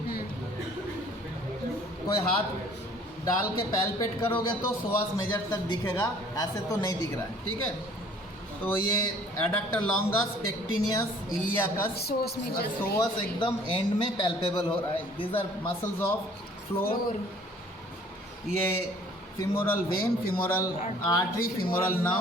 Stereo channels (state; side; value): normal; both; correlation 0.54